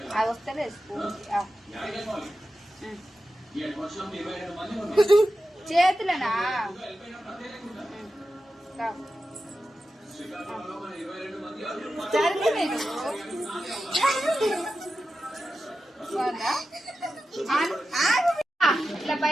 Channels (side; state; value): both; normal; correlation 0.92